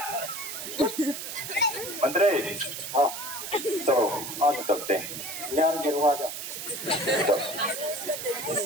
मंत्री हाँ चलो आज चलते हैं, यार गिरवा जा।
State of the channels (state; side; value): noise; right; hiss, 7 dB below the sound